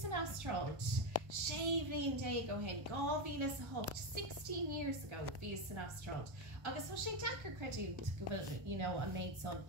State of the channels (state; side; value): late; left; 1.3 ms